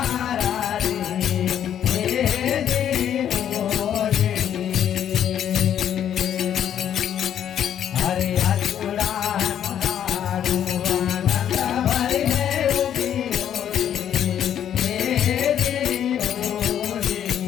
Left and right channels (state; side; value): quieter; right; 9.8 dB